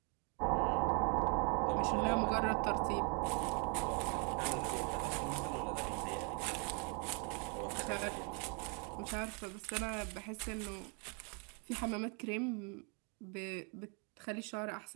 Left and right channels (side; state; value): left; quieter; 36.6 dB